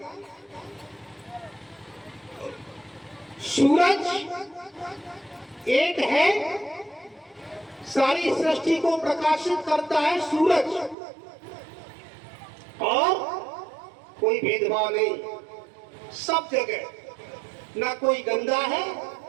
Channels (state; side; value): drops out; left; at 11.0 s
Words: सूरज एक है, सारी सृष्टि को प्रकाशित करता है सूरज, और कोई भेदभाव नहीं, सब जगह। ना कोई गंदा है,